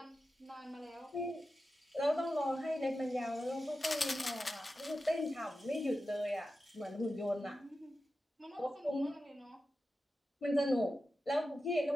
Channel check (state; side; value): normal; both; correlation 0.92